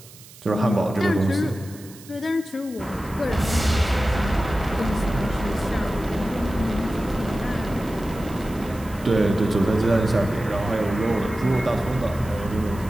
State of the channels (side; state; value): right; noise; hiss, 20 dB below the sound